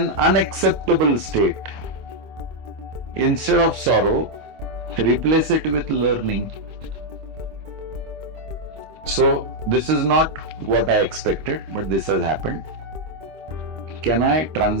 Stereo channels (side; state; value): left; late; 25 ms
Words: unacceptable state, instead of sorrow, replace it with learning. So this is not what I expected, but this has happened. Can I